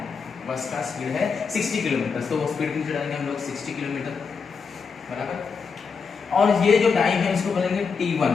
बस का स्पीड है 60 किलोमीटर, तो वो स्पीड नीचे डालेंगे हम लोग 60 किलोमीटर बराबर। और ये जो टाइम है इसको बोलेंगे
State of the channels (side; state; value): right; quieter; 5.5 dB